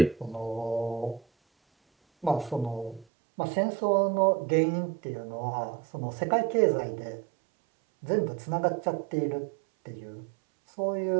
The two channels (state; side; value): drops out; left; at 3.1 s